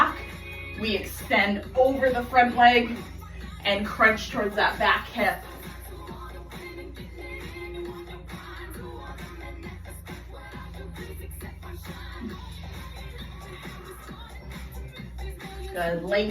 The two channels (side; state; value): both; identical; correlation 1.00